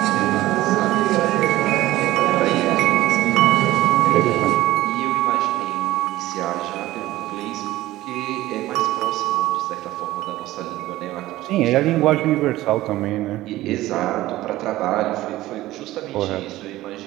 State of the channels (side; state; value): left; quieter; 16.4 dB